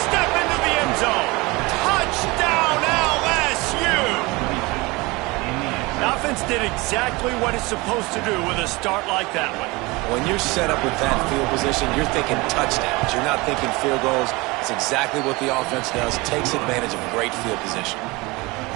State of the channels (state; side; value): quieter; left; 23.7 dB